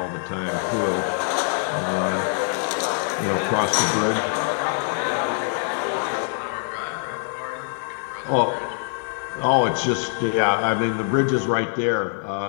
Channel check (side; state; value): right; silent; 63 dB below the other